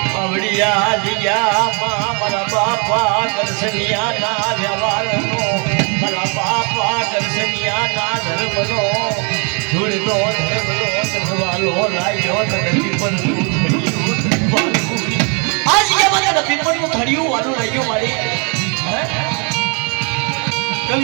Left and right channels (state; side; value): quieter; left; 36.0 dB